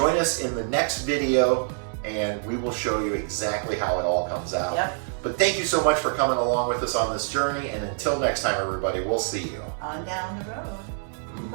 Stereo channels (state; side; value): silent; left; digital silence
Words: us in the next video and we will show you exactly how it all comes out. Yep. But thank you so much for coming along with us on this journey, and until next time, everybody, we'll see you On down the road.